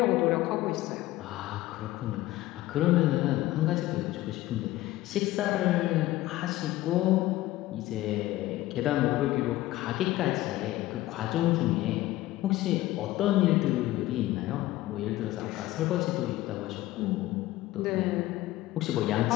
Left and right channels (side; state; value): right; quieter; 16.4 dB